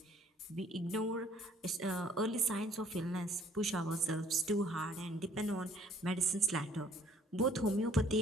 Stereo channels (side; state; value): both; normal; correlation 0.59